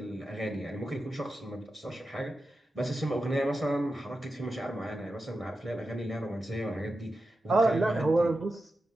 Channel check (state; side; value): normal; both; correlation 0.91